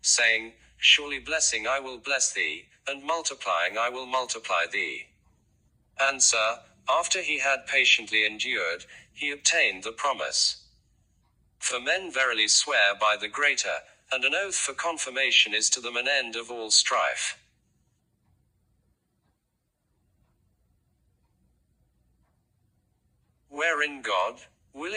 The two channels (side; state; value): both; identical; correlation 1.00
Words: saying, Surely blessing I will bless thee, and multiplying I will multiply thee. Answer, after he had patiently endured, he obtained the promise. For men verily swear by the greater, and an oath for confirmation is to them an end of all strife. Wherein God,